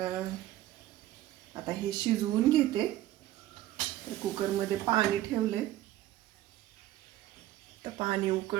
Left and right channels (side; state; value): left; quieter; 14.5 dB